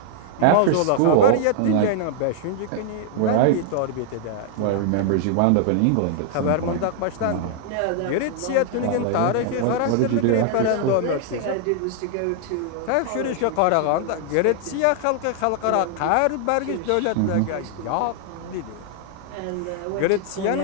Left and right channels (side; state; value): both; different; correlation -0.01